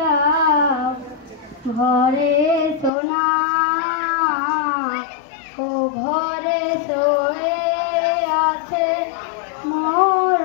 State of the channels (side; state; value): right; drops out; at 2.9 s